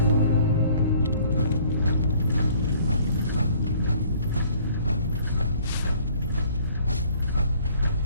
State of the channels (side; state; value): both; inverted; correlation -0.57